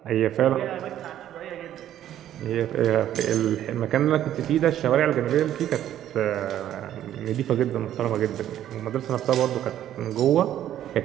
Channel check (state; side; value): quieter; left; 11.6 dB